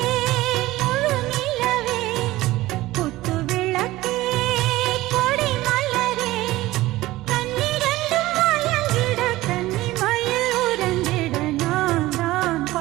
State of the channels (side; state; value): left; quieter; 17.6 dB